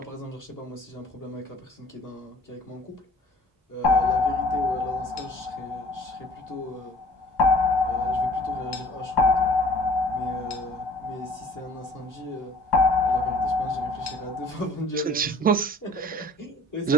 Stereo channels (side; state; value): both; normal; correlation 0.51